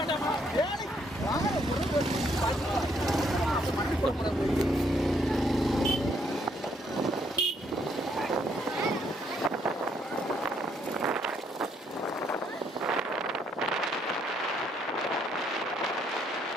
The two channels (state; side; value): normal; both; correlation 0.71